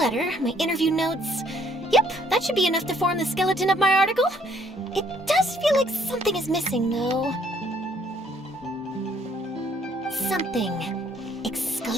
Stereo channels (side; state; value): both; normal; correlation 0.64